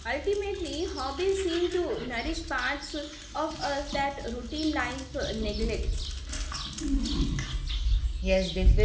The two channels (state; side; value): identical; both; correlation 1.00